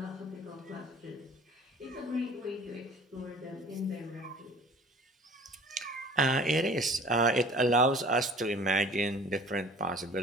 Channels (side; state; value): both; normal; correlation 0.47